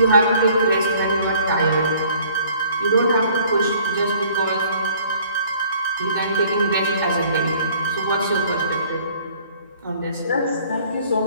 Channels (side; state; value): both; inverted; correlation -0.56